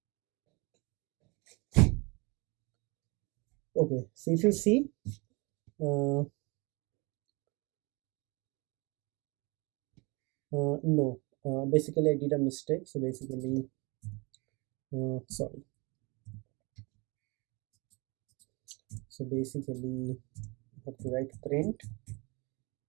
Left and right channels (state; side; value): quieter; left; 27.7 dB